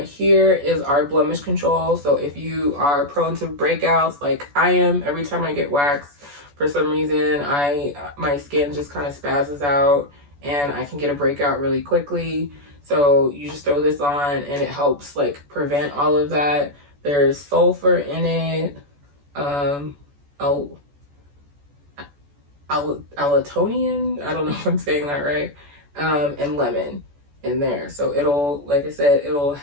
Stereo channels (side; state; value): left; late; 14 ms